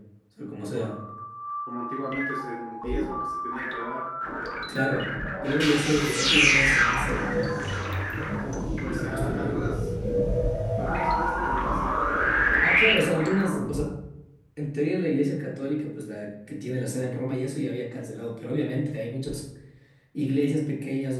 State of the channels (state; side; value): identical; both; correlation 1.00